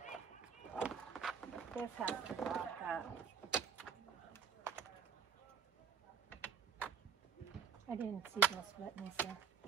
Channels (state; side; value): quieter; left; 6.7 dB